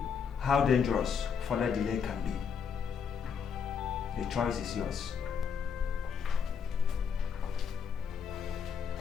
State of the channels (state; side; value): quieter; right; 6.7 dB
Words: how dangerous further delay can be. The choice is yours.